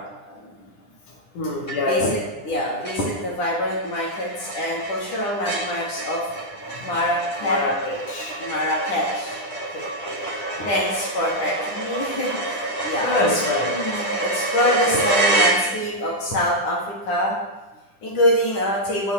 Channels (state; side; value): late; right; 10 ms